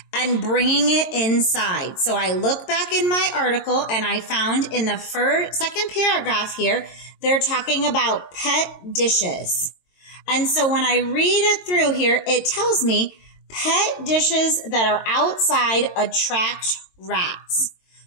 and bringing it inside. So I look back in my article and I found in the second paragraph here, they're talking about pet dishes. And so when I read it through here, it tells me pet dishes that are outside attract rats.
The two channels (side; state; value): right; late; 22 ms